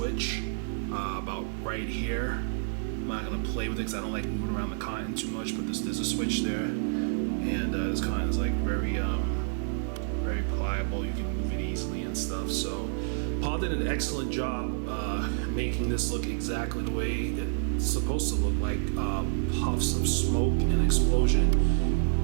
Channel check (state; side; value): silent; left; 59 dB below the other